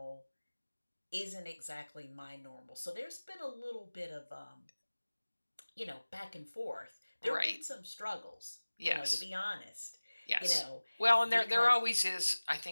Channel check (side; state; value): both; inverted; correlation -1.00